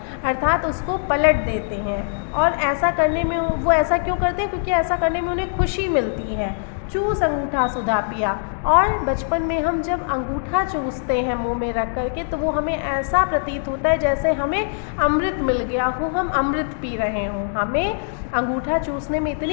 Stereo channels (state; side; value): silent; right; digital silence